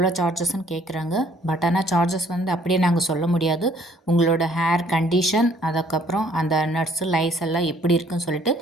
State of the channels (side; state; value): both; normal; correlation 0.61